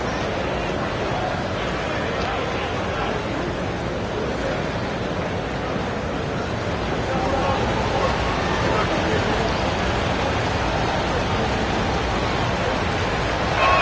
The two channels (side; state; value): both; identical; correlation 1.00